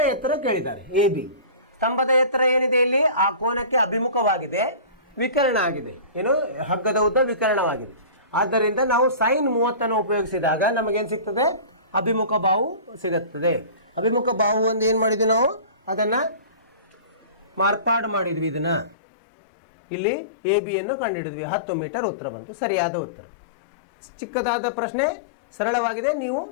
ಎತ್ತರ ಕೇಳಿದ್ದಾರೆ ಎ ಬಿ. ಸ್ತಂಭದ ಎತ್ತರ ಏನಿದೆ ಇಲ್ಲಿ ಆ ಕೋನಕ್ಕೆ ಅಭಿಮುಖವಾಗಿದೆ, ವಿಕರ್ಣ ಆಗಿದೆ. ಏನು? ಹಗ್ಗದ ಉದ್ದ ವಿಕರ್ಣವಾಗಿದೆ. ಆದ್ದರಿಂದ ನಾವು sin 30 ಉಪಯೋಗಿಸಿದಾಗ ನಮಗೇನು ಸಿಗ್ತದೆ? ಅಭಿಮುಖ ಬಾಹು ಸಿಗುತ್ತದೆ. ಅಭಿಮುಖ ಬಾಹು ಒಂದು ಏನು ಮಾಡಿದ್ವಿ ನಾವು? ಅದನ್ನು ಮಾರ್ಪಾಡು ಮಾಡಿದ್ವಿ. ಇದನ್ನು ಇಲ್ಲಿ ಎ ಬಿಯನ್ನು ಕಂಡುಹಿಡಿದ್ವಿ. 10 ಮೀಟರ್ ಉತ್ತರ ಬಂತು. ಸರಿಯಾದ ಉತ್ತರ. ಚಿಕ್ಕದಾದ ಪ್ರಶ್ನೆ, ಸರಳವಾಗಿದೆ. ನೀವು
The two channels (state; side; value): drops out; right; at 18.9 s